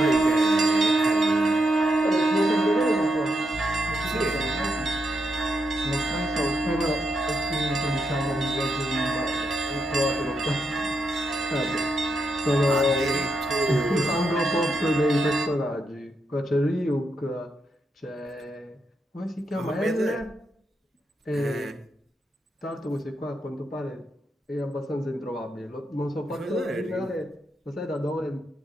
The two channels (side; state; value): both; normal; correlation 0.82